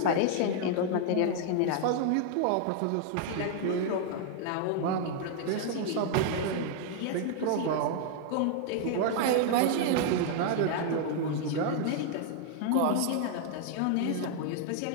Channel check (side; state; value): both; different; correlation 0.00